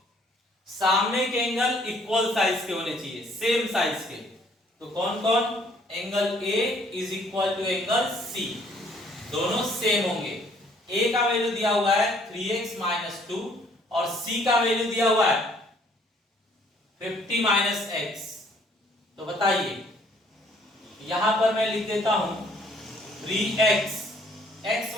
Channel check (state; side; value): normal; both; correlation 0.62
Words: सामने के एंगल इक्वल साइज के होने चाहिए, सेम साइज के। तो कौन कौन? Angle A is equal to angle C, दोनों सेम होंगे। ए का वैल्यू दिया हुआ है 3x - 2 और c का वैल्यू दिया हुआ है 50 - x। तो बताइए, यहां पर मैं लिख देता हूं 3x, x